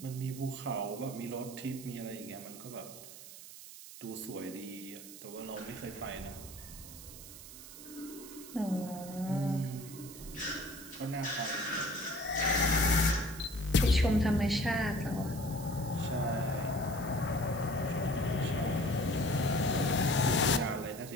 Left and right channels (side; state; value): right; noise; hiss, 14 dB below the sound